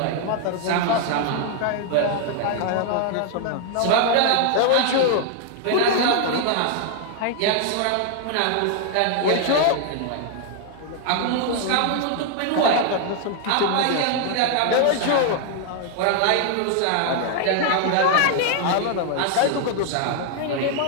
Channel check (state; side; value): different; both; correlation 0.00